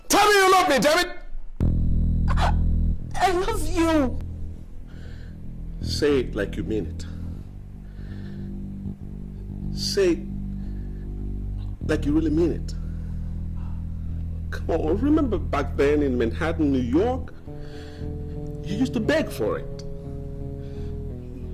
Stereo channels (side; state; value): both; identical; correlation 1.00